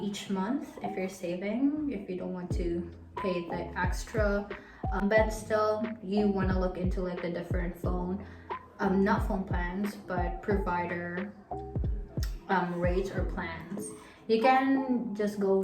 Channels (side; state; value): both; identical; correlation 1.00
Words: month if you're saving, if you don't want to pay the extra. But still, you want to look into like the different phone, not phone plans, but provider rates or plans. You can just go